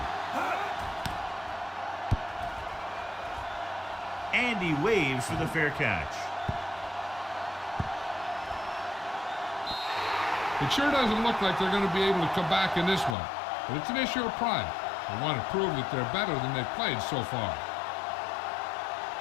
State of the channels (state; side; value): drops out; right; at 13.2 s